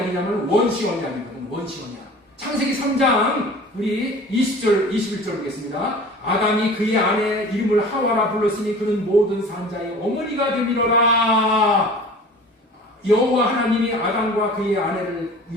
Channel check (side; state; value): both; normal; correlation 0.42